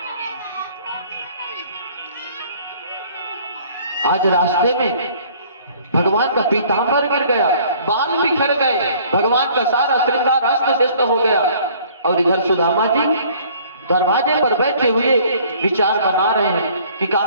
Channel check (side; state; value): both; inverted; correlation -0.55